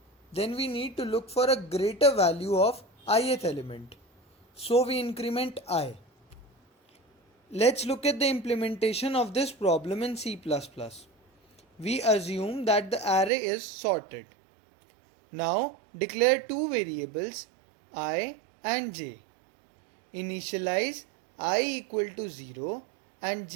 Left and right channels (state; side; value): drops out; left; at 13.3 s